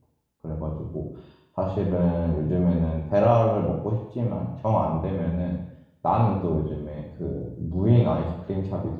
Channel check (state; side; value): identical; both; correlation 1.00